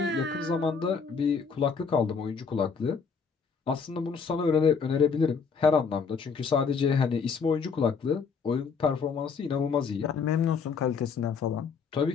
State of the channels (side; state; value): right; quieter; 5.7 dB